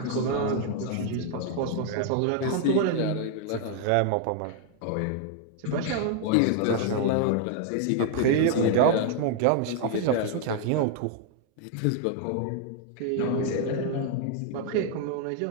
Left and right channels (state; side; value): different; both; correlation 0.00